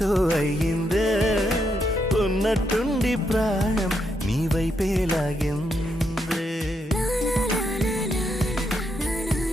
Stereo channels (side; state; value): both; normal; correlation 0.79